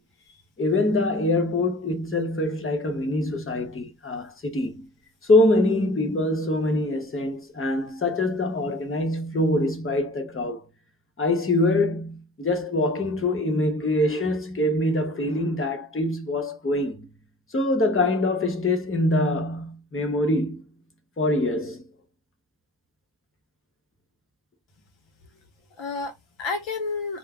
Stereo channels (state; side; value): normal; both; correlation 0.45